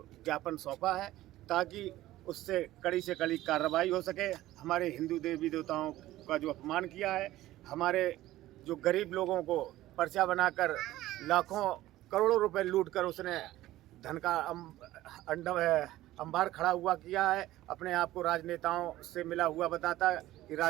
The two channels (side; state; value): left; quieter; 15.6 dB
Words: ज्ञापन सौंपा है, ताकि उससे कड़ी से कड़ी कार्रवाई हो सके। हमारे हिंदू देवी देवताओं का जो अपमान किया है, हमारे जो गरीब लोगों को पर्चा बनाकर लाखों करोड़ों रुपए लूटकर उसने धन का अंबार खड़ा हुआ किया है। अपने आप को राजनेताओं से मिला हुआ बताता है कि